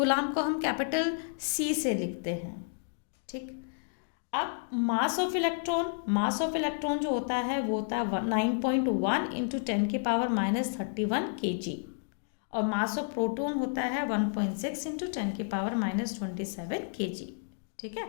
को हम कैपिटल सी से लिखते हैं। ठीक, अब मास ऑफ इलेक्ट्रॉन जो होता है वो होता है 9.1 इंटू 10 की पावर माइनस 31 kg, और मास ऑफ प्रोटॉन होता है 1.6 इंटू 10 की पावर माइनस 27 kg। ठीक है,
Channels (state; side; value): silent; right; digital silence